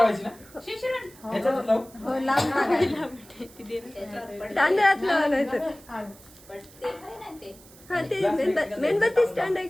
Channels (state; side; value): noise; right; hiss, 23 dB below the sound